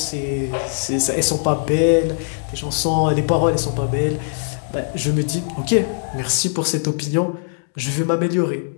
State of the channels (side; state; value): right; silent; digital silence